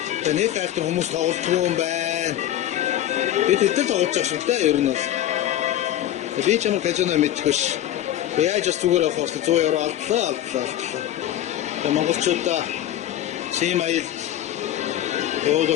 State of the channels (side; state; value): right; quieter; 12.1 dB